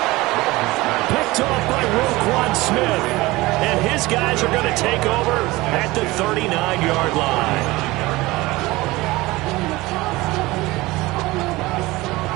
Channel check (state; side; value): quieter; left; 20.2 dB